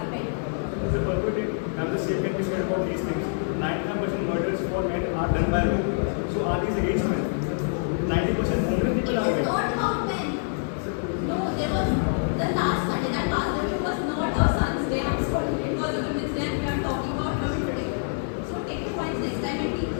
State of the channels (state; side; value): silent; right; 59 dB below the other